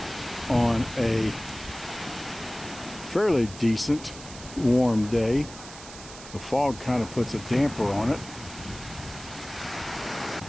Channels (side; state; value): right; noise; hiss, 15 dB below the sound